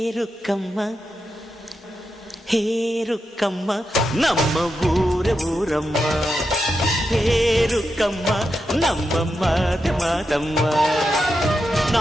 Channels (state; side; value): normal; both; correlation 0.87